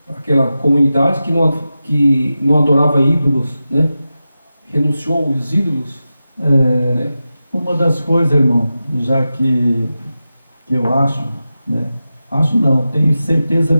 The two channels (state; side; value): inverted; both; correlation -0.93